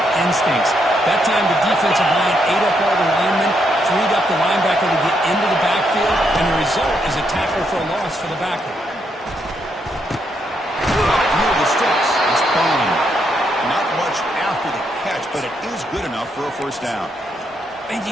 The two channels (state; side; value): normal; both; correlation 0.77